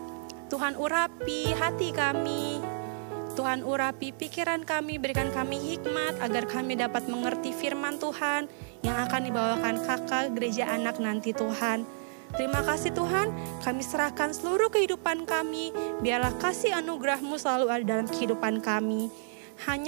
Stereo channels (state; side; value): silent; left; digital silence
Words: Tuhan urapi hati kami. Tuhan urapi pikiran kami, berikan kami hikmat agar kami dapat mengerti firman Tuhan yang akan dibawakan kakak gereja anak nanti Tuhan. Terima kasih Tuhan, kami serahkan seluruh kehidupan kami, biarlah kasih anugerah-Mu selalu ada dalam kehidupan kami.